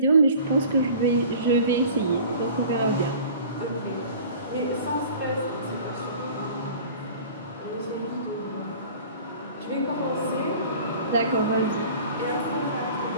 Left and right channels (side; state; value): both; inverted; correlation -0.44